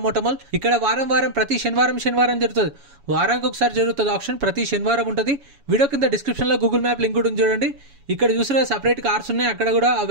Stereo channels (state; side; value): late; left; 7.1 ms